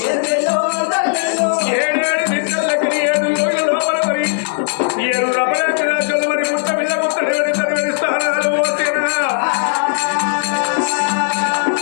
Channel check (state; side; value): silent; right; digital silence